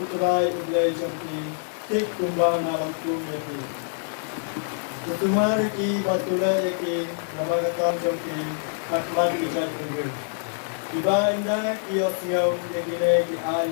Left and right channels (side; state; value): right; silent; 61 dB below the other